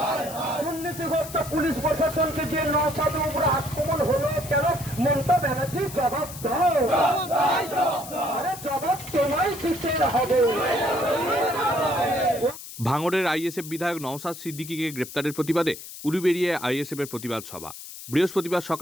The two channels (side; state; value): left; noise; hiss, 13 dB below the sound